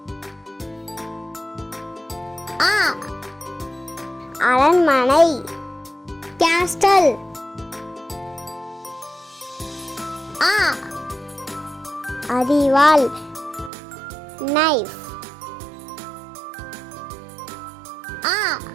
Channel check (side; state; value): left; drops out; at 13.7 s